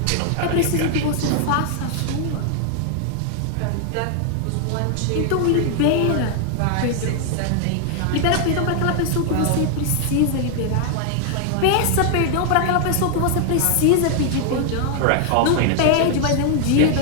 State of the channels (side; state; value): both; different; correlation 0.00